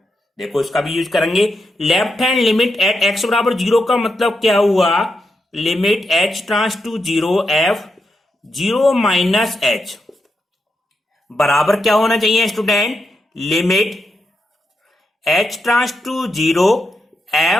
देखो इसका भी यूज करेंगे। Left hand limit at x बराबर 0 का मतलब क्या हुआ, limit h tends to 0 f 0 minus h बराबर क्या होना चाहिए student, limit h tends to 0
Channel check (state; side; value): normal; both; correlation 0.85